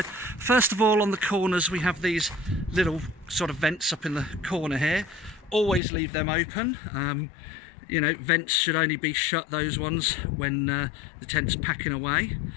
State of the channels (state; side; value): drops out; right; at 5.8 s